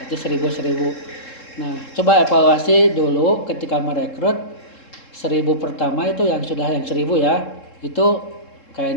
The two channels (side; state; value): right; late; 3.7 ms